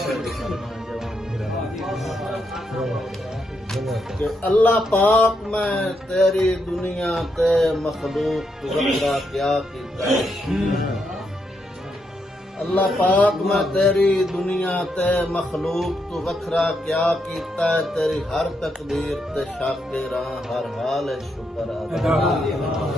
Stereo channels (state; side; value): normal; both; correlation 0.80